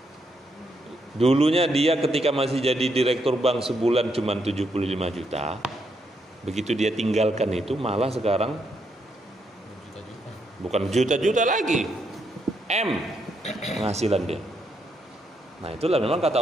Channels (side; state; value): both; normal; correlation 0.78